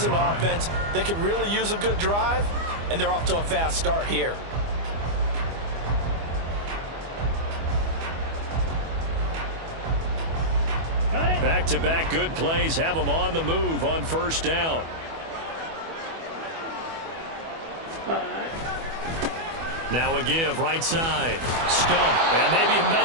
an offense that could really use a good drive, and they're off to a fast start here. Back-to-back good plays have them on the move on 1st down. Now a give, right side. Stump, and maybe a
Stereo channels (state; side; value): late; left; 24 ms